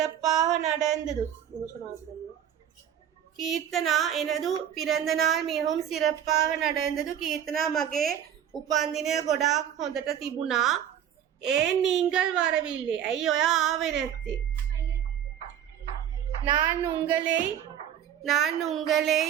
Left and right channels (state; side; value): quieter; left; 9.8 dB